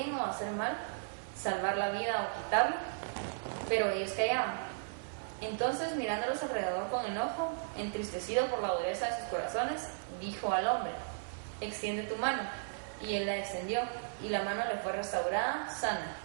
o hacer mal, salvar la vida o quitarla? Pero ellos callaban. Entonces, mirándolos alrededor con enojo, entristecido por la dureza de sus corazones, dijo al hombre: extiende tu mano. Y él la extendió, y la mano le fue restaurada, sana.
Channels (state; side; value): silent; left; 54 dB below the other